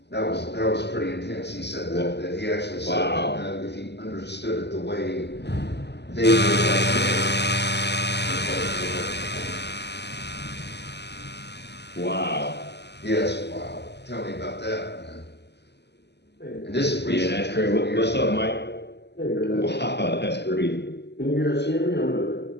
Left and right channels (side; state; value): right; late; 0.50 ms